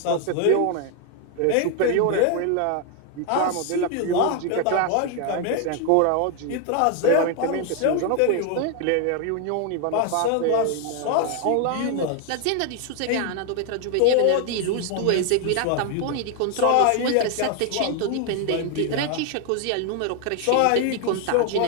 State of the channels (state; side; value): different; both; correlation 0.00